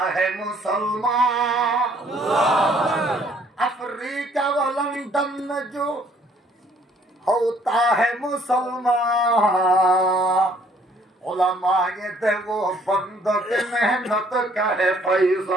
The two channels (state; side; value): normal; both; correlation 0.62